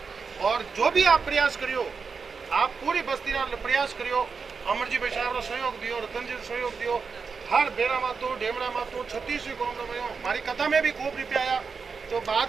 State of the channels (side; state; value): left; quieter; 5.3 dB